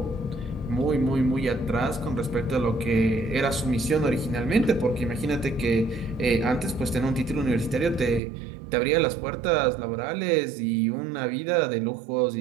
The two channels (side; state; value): left; drops out; at 8.2 s